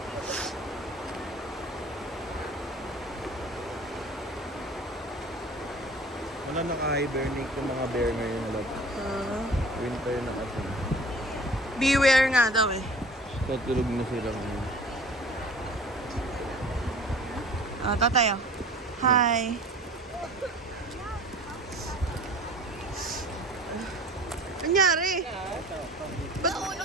Wala naka-hibernate yung mga bear ngayon. Winter na kasi. Beware nga daw eh. Tutulog na sila ngayon. Ah, tatay, oh. Hi. Anyari?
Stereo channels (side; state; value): both; normal; correlation 0.43